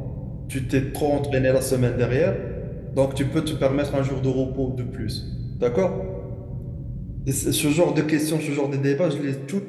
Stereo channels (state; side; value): identical; both; correlation 1.00